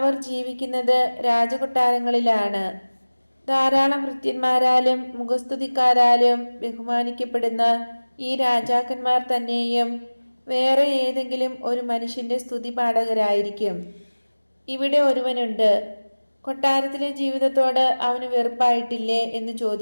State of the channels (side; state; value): both; inverted; correlation -1.00